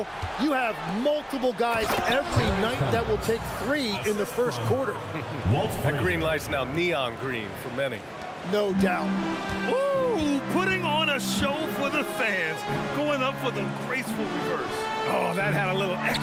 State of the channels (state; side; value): identical; both; correlation 1.00